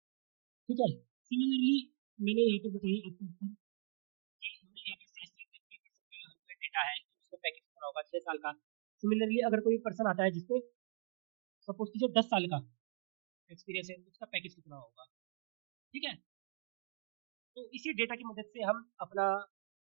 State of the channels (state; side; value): silent; left; digital silence